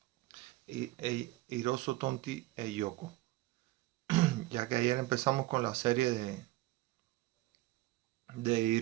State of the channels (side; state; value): left; quieter; 18.2 dB